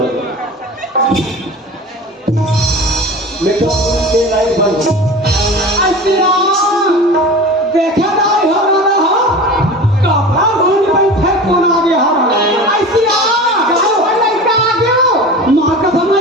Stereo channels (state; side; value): normal; both; correlation 0.34